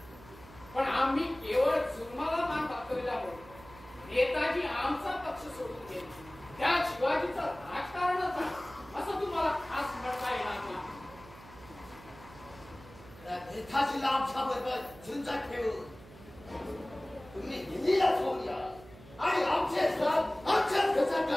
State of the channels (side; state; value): right; noise; hum, 20 dB below the sound